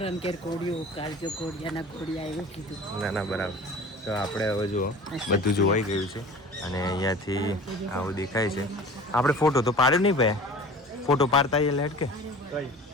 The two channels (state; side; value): normal; both; correlation 0.41